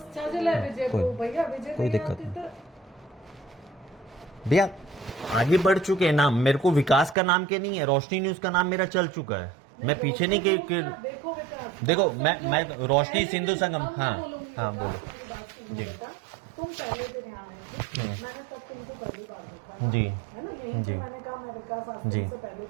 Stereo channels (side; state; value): left; drops out; at 7.2 s